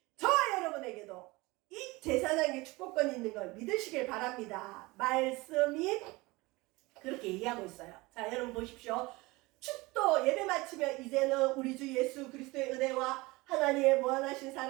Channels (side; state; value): left; quieter; 22.5 dB